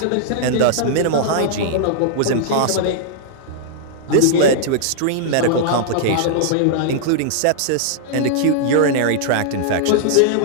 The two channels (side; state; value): both; different; correlation -0.01